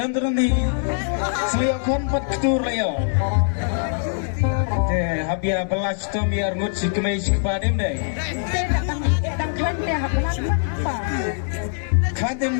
turun di selio kon pat kitur layo. Teh habia belas tom biar ngut si kemai si kepadem deh. Kadem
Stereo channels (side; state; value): right; silent; digital silence